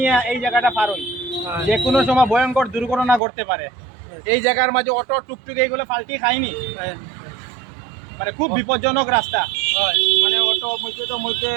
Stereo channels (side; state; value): left; drops out; at 3.2 s